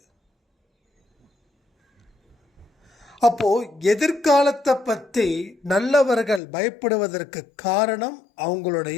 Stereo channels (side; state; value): right; drops out; at 6.4 s